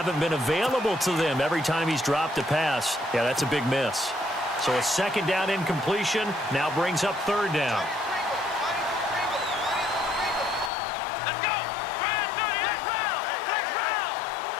been available to them every time he's dropped a pass. Yeah, that's a big miss. So a 2nd down incompletion now brings up 3rd down.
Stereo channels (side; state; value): right; drops out; at 10.7 s